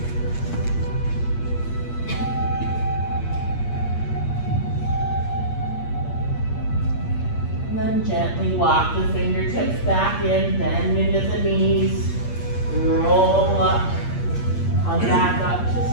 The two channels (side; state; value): right; late; 8.5 ms